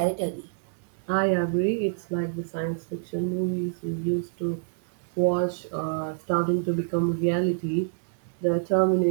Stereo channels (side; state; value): left; silent; digital silence